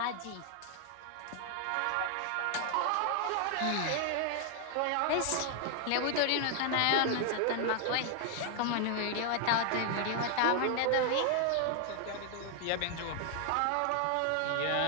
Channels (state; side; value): different; both; correlation 0.00